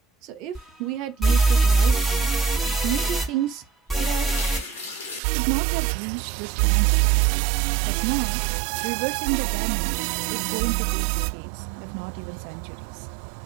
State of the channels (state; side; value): drops out; left; at 5.2 s